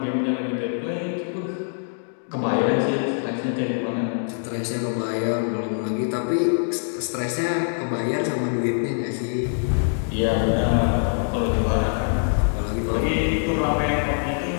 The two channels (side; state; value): right; silent; digital silence